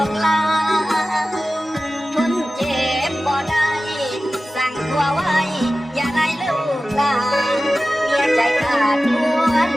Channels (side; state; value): both; normal; correlation 0.96